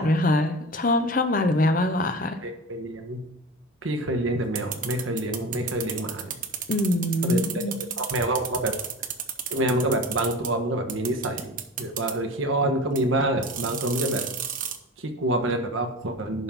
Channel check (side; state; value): both; normal; correlation 0.32